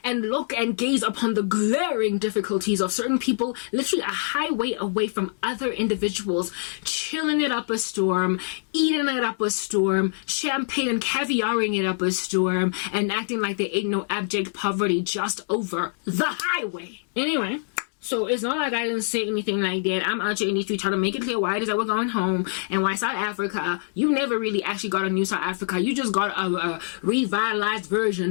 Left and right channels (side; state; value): right; silent; digital silence